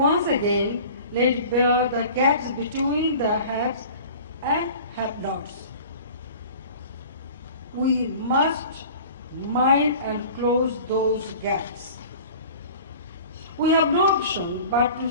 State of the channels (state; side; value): inverted; both; correlation -0.42